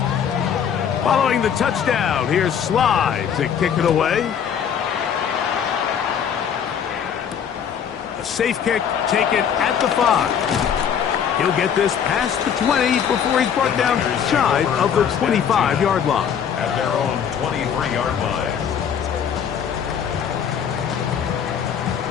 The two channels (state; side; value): quieter; right; 8.0 dB